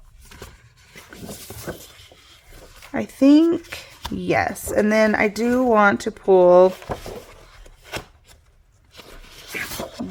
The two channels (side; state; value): both; identical; correlation 1.00